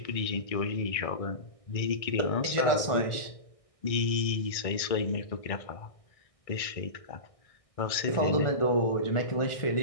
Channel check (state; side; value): late; right; 1.6 ms